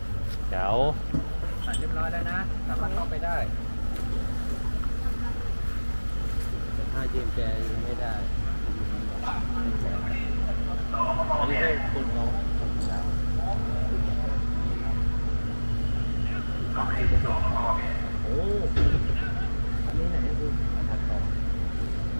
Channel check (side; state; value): both; inverted; correlation -1.00